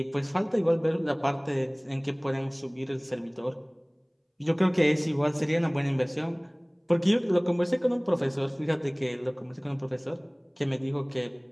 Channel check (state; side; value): identical; both; correlation 1.00